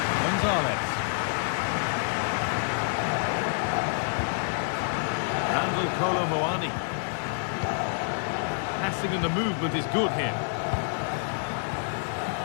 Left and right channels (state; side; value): silent; right; digital silence